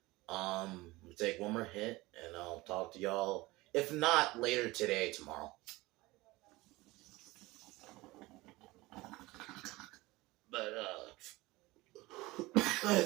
we'll take one more hit, and I'll talk to y'all. If not later today, tomorrow. But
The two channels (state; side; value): quieter; left; 20.6 dB